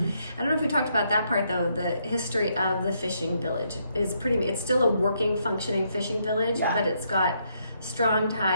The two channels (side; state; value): both; inverted; correlation -0.75